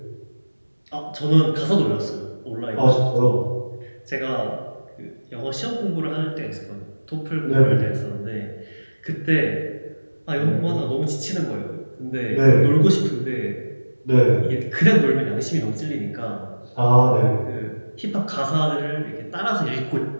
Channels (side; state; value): both; inverted; correlation -1.00